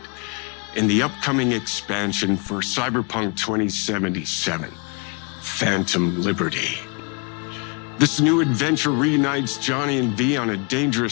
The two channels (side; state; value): right; quieter; 35.4 dB